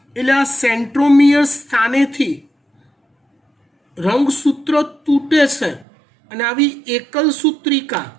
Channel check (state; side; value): drops out; left; at 5.9 s